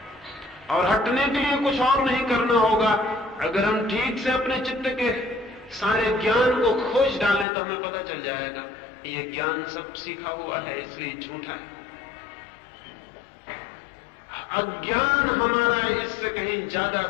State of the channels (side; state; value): right; drops out; at 7.5 s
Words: और हटने के लिए कुछ और नहीं करना होगा। अगर हम ठीक से अपने चित्त के सारे ज्ञान को खोज डालें तो हमें पता चल जाएगा ये ज्ञान सब सीखा हुआ है, इसलिए झूठा है। अज्ञान हमारा इससे कहीं ज्यादा